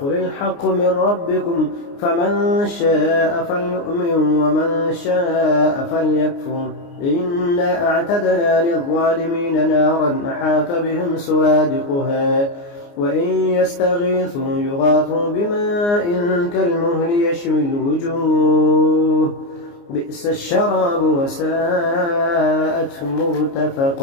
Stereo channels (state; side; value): late; right; 29 ms